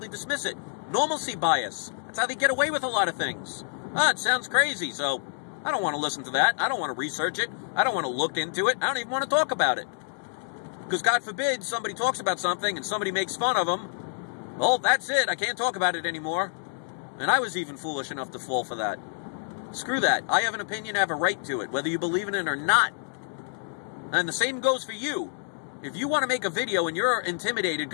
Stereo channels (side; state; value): right; silent; digital silence